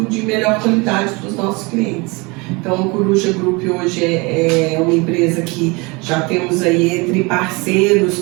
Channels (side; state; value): left; quieter; 26.8 dB